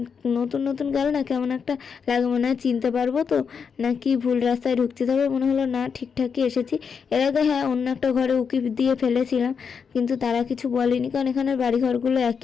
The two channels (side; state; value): right; quieter; 6.3 dB